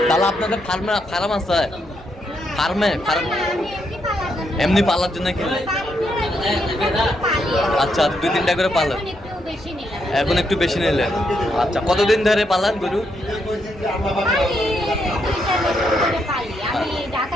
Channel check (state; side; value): normal; both; correlation 0.78